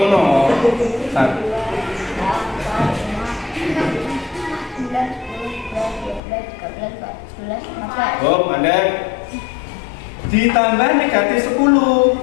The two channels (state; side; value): drops out; right; at 6.2 s